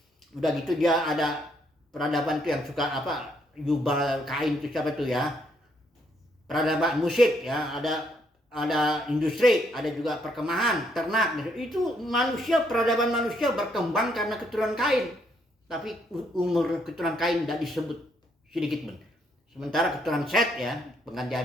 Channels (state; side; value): normal; both; correlation 0.72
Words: Udah gitu dia ada peradaban itu yang suka apa? Yubal Kain itu siapa tuh ya? Peradaban musik ya, ada industri, ada juga perkemahan, ternak. Itu peradaban manusia berkembang karena keturunan Kain. Tapi umur keturunan Kain tidak disebut sedikit pun. Sementara keturunan Set ya, pengganti